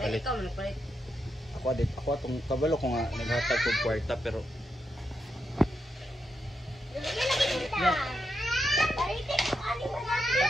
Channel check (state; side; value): normal; both; correlation 0.84